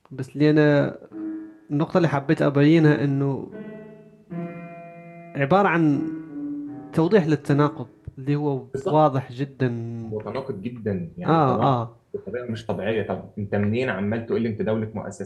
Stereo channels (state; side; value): identical; both; correlation 1.00